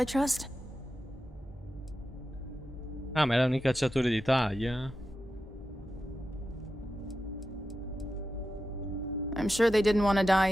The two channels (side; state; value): both; normal; correlation 0.90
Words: trust? Ah, ma erano i cacciatori d'Italia. I'm sure they didn't want to